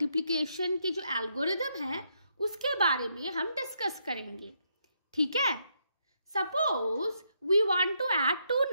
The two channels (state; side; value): inverted; both; correlation -0.77